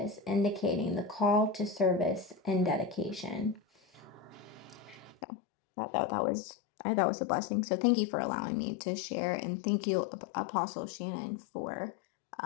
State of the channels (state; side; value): drops out; right; at 5.2 s